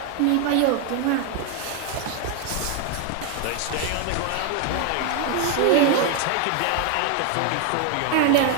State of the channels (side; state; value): both; different; correlation 0.01